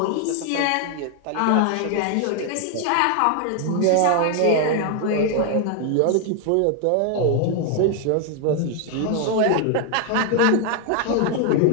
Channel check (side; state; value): both; different; correlation 0.00